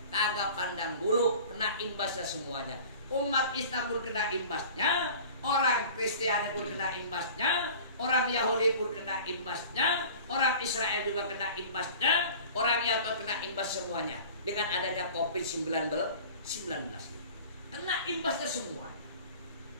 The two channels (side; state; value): both; inverted; correlation -0.42